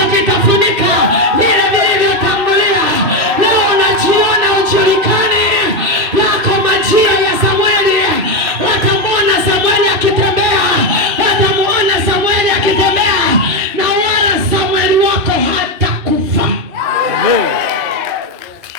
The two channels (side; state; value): left; late; 3.1 ms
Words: kitafunika vile vilivyotangulia. Leo unajiona ujulikane, yako majira ya Samueli. Watamuona Samueli akitembea, watamuona Samueli akitembea, na wala Samueli wako hatakufa.